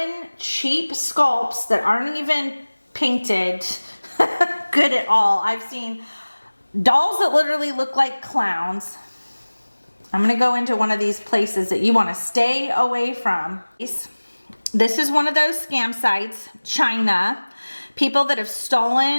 cheap sculpts that aren't even painted good at all. I've seen dolls that literally look like clowns. I'm going to go into one of these places that you want to stay away from. This is one of those scam sites, China. People that have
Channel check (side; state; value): both; inverted; correlation -1.00